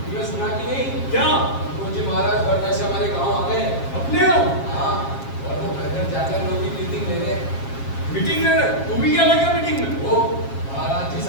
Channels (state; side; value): late; right; 7.4 ms